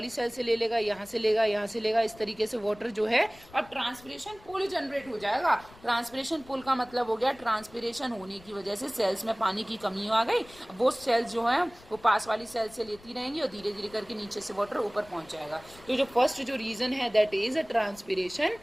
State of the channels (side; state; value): left; noise; rumble, 23 dB below the sound